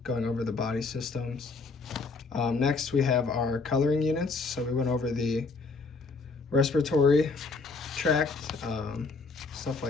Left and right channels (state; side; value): quieter; right; 4.1 dB